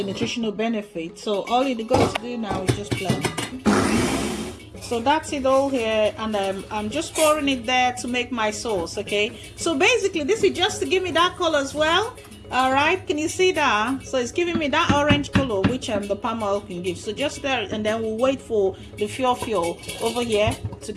nutritional benefit. So all you got to do now is just blend. So that's it all here, and I'm just pouring it there to make my sauce. Okay, so basically this is just to give me that color as well. All right, can you see that? So it's giving me that orange color which the palm oil can give. So just there, and then we'll wait for the Fio-Fio over here to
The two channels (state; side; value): identical; both; correlation 1.00